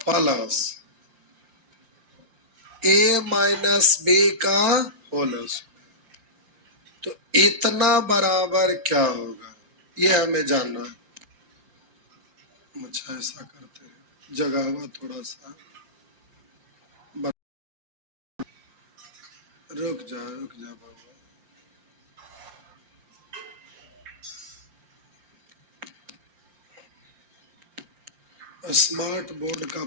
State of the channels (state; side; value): late; left; 5.7 ms